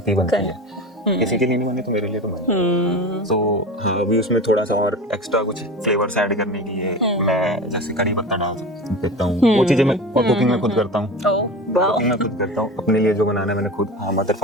है, किसी के लिए नहीं बनी तो मेरे लिए तो बनी। तो हाँ अभी उसमें थोड़ा सा और एक्स्ट्रा कुछ फ्लेवर्स ऐड करने के लिए मैं जैसे कड़ी पत्ता डाल देता हूँ, वो चीजें मैं और कुकिंग में खुद करता हूँ, अपने लिए जो बनाना है मैंने खुद, मदर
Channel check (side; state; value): both; normal; correlation 0.31